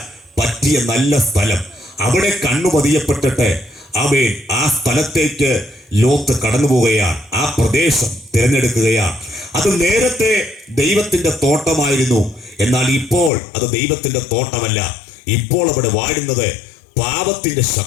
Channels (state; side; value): drops out; right; at 13.3 s